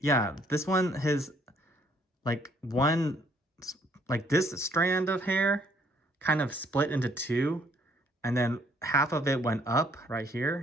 yeah, this one, his like this strand of hair kind of split into two, and then half of it went up right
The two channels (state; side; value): normal; both; correlation 0.65